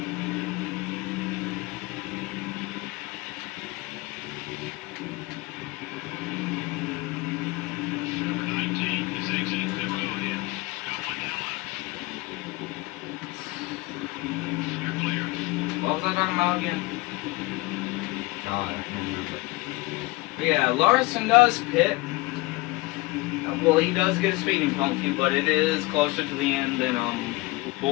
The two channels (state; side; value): quieter; right; 22.2 dB